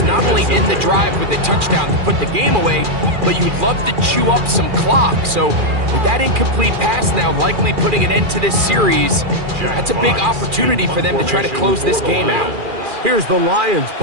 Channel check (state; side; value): late; left; 2.4 ms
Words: not only end the drive with a touchdown to put the game away, but you'd love to chew up some clock. So with that incomplete pass now likely putting an end to this series, that's a big opportunity for them to try to close this game out. Here's the Lions